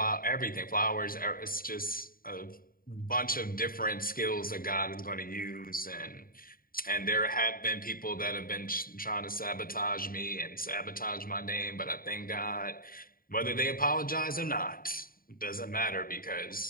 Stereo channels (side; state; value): right; late; 0.42 ms